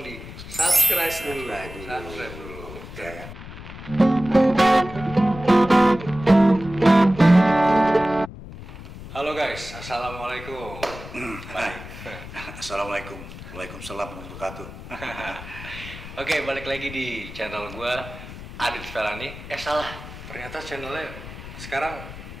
di subscribe dulu. Subscribe dulu. Ya kan? Halo guys, assalamualaikum. Baik. Assalamualaikum. Waalaikumsalam warahmatullahi wabarakatuh. Oke, balik lagi di channel gua Adit Felani. Salah. Ternyata channelnya sekarang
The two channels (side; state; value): left; noise; rumble, 13 dB below the sound